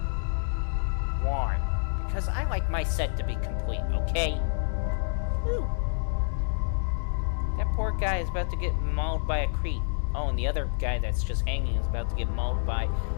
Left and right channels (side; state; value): right; silent; digital silence